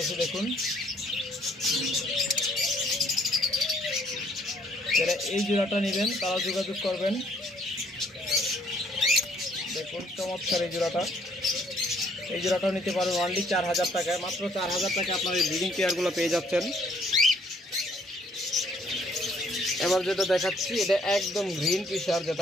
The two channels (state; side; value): normal; both; correlation 0.64